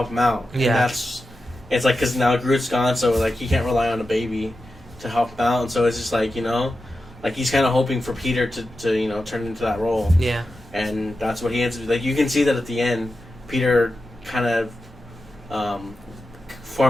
him out. Yeah. And it's like, because now Groot's gone, so like he can't rely on a baby to help him out, and so it's just like, like he's kind of hoping for Peter to turn into that role. Yeah. And that's what he ends up, like, you can see that at the end, Peter kind of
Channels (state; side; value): normal; both; correlation 0.91